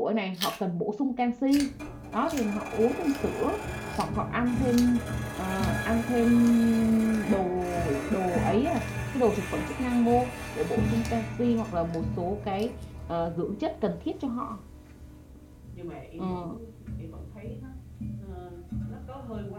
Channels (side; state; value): both; identical; correlation 1.00